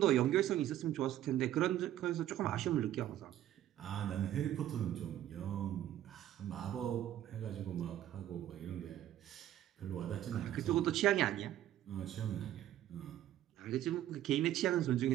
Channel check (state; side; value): quieter; left; 12.5 dB